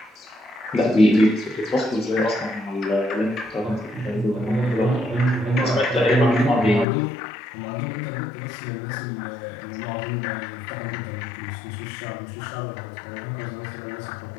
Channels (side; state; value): right; drops out; at 6.9 s